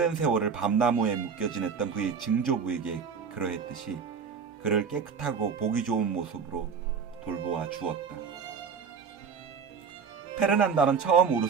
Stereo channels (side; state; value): left; quieter; 6.2 dB